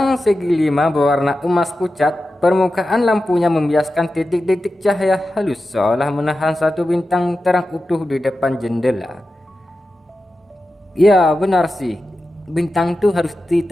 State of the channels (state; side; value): normal; both; correlation 0.92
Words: segi 5 berwarna emas pucat. Permukaan lampunya membiaskan titik-titik cahaya halus seolah menahan satu bintang terang utuh di depan jendela. Ya benar sih. Bintang tuh harus